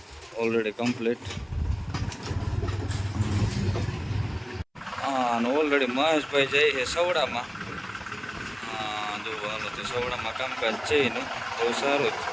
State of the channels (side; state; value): both; identical; correlation 1.00